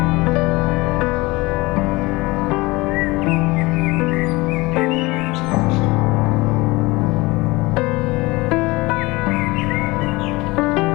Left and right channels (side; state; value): right; quieter; 22.4 dB